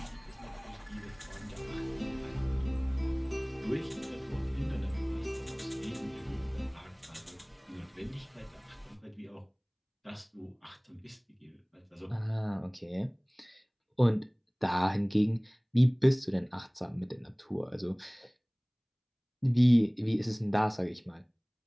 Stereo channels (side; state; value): both; identical; correlation 1.00